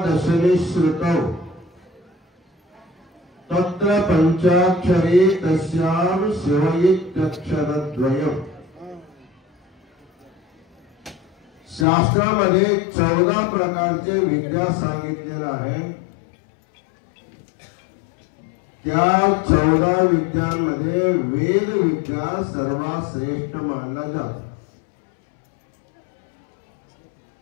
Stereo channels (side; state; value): right; drops out; at 11.9 s